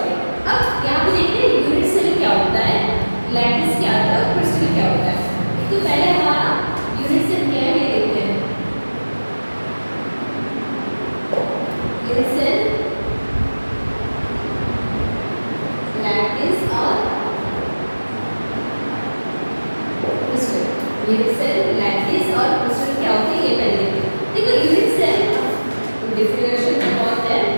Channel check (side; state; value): both; inverted; correlation -1.00